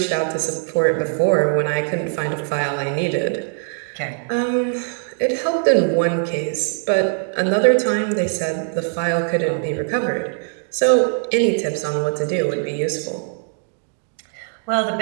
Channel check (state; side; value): silent; left; 61 dB below the other